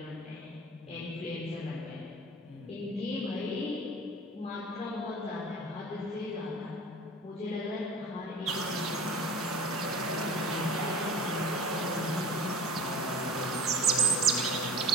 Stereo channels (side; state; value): both; normal; correlation 0.38